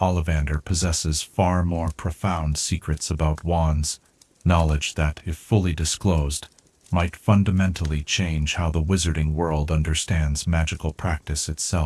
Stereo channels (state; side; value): identical; both; correlation 1.00